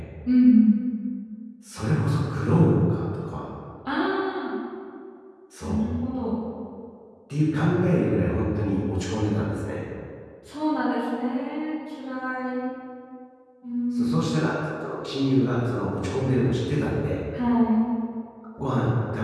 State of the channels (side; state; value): both; identical; correlation 1.00